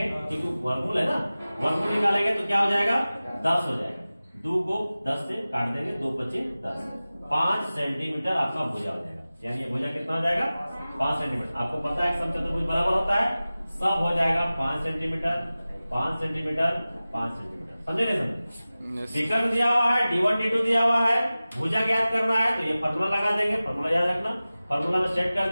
क्योंकि वर्गमूल है ना, वर्गमूल निकालेंगे तो क्या हो जाएगा? 10 हो जाएगा। 2 को 10 से काट देंगे, 2 बचे 10। 5 सेंटीमीटर आपका भुजा हो जाएगा। यानी ये भुजा कितना हो जाएगा 5 सेंटीमीटर। आपको पता है समचतुर्भुज बराबर होता है, सब हो जाएगा 5 सेंटीमीटर 5 सेंटीमीटर 5 सेंटीमीटर। समझे नहीं समझे? विकर्ण दिया हुआ है, D1 D2 दिया हुआ है, भुजा ज्ञात करना है तो ये फॉर्मूला लगा देंगे, फॉर्मूला याद रखना। फॉर्मूला में सेट कर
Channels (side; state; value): both; inverted; correlation -0.97